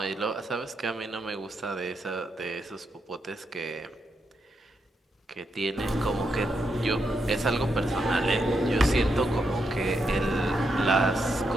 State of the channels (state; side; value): normal; both; correlation 0.82